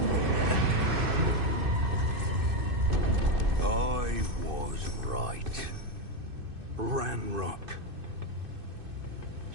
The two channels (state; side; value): late; left; 2.6 ms